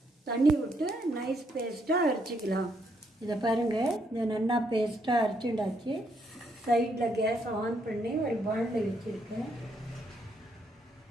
தண்ணி விட்டு நைஸ் பேஸ்ட்டாக அரைச்சிக்கலாம். இதை பாருங்கள், இதை நல்லா பேஸ்ட்டாக அரைச்சிண்டாச்சு. சைடில் கேஸ் ஆன் பண்ணி ஒரு பாண்டில் வச்சுருக்கேன்.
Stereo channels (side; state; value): both; normal; correlation 0.74